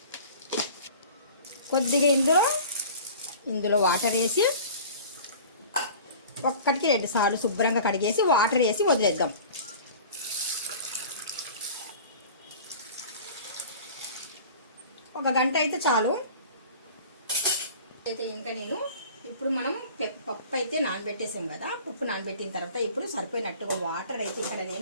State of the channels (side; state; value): both; inverted; correlation -0.41